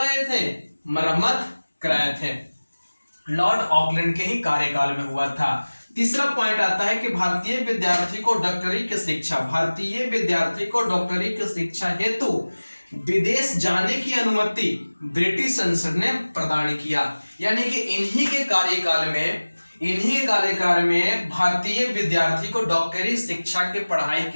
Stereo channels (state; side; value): inverted; both; correlation -1.00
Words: थे, मरम्मत कराए थे। लॉर्ड ऑकलैंड के ही कार्यकाल में हुआ था। तीसरा पॉइंट आता है कि भारतीय विद्यार्थी को डॉक्टरी की शिक्षा हेतु विदेश जाने की अनुमति ब्रिटिश संसद ने प्रदान किया। यानी कि इन्हीं के कार्यकाल में भारतीय विद्यार्थी को डॉक्टरी शिक्षा की पढ़ाई